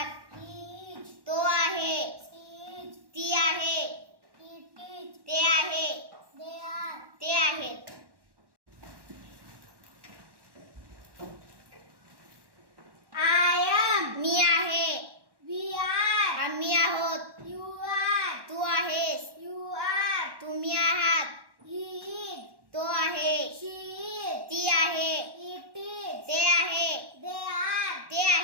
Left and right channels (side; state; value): left; late; 1.1 ms